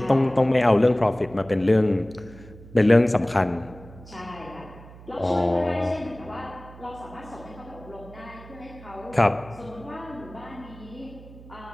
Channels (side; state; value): right; noise; hum, 19 dB below the sound